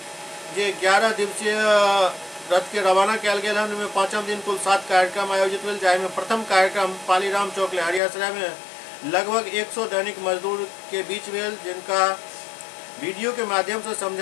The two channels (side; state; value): right; drops out; at 8.0 s